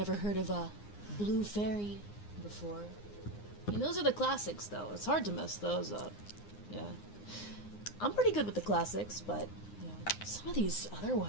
heard of a Blue Fairy before. I mean, those are the classics, though. It's hard to mess those up. Yeah. I'm pretty good with the classics, but, you know, some of these other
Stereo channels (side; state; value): right; late; 9.7 ms